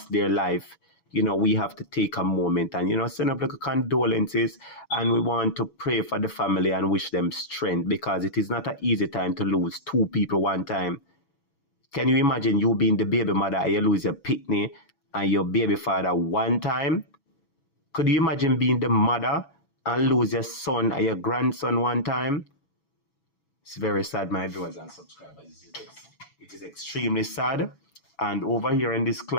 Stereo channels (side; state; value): right; late; 6.1 ms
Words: their life, you know, we have to take a moment and, you know, send up like a condolences, and we want to pray for the family and wish them strength, because it is not an easy time to lose 2 people one time. Can you imagine you being the baby mother and you lose your pitney and your baby father one time? Could you imagine being the mother and lose your son and your grandson one time? It's very sad, my viewers and subscribers. It is extremely sad. And over here in this